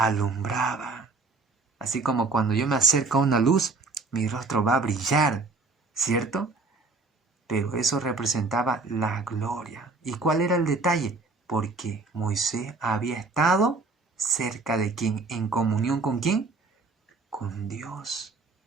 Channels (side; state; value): left; quieter; 3.8 dB